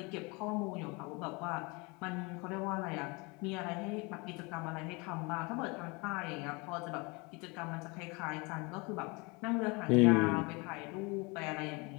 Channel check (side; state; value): right; quieter; 28.0 dB